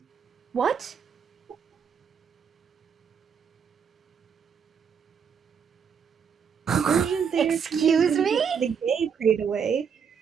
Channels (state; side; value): quieter; left; 6.9 dB